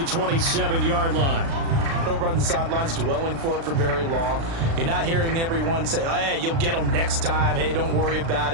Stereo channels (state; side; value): late; left; 36 ms